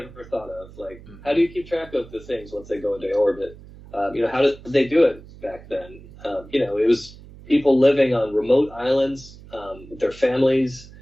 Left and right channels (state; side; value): noise; right; hum, 19 dB below the sound